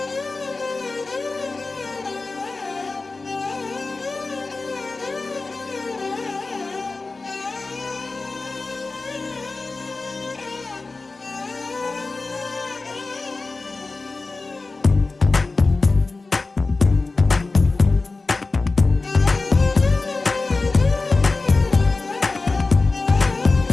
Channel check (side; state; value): right; quieter; 3.6 dB